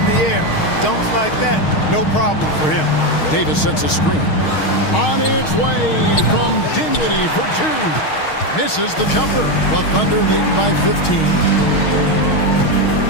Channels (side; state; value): right; late; 6.4 ms